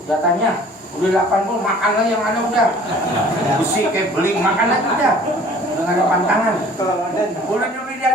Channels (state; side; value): normal; both; correlation 0.50